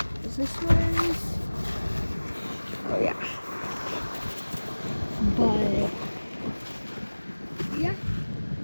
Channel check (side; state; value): both; inverted; correlation -1.00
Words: Is this yours? Oh yeah. But yeah.